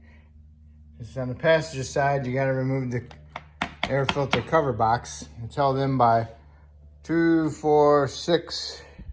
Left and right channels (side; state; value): both; identical; correlation 1.00